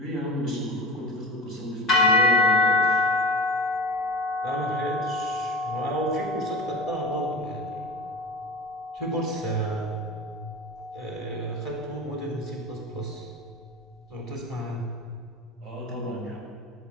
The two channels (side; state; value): both; normal; correlation 0.30